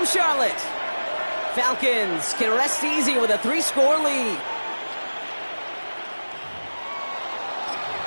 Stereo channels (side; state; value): both; inverted; correlation -1.00